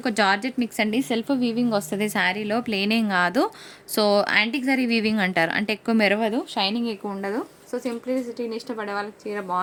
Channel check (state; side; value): identical; both; correlation 1.00